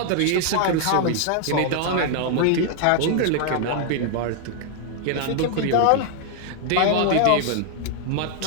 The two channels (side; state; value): both; different; correlation 0.00